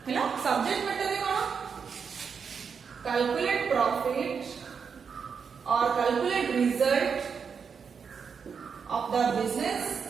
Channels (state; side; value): quieter; left; 6.2 dB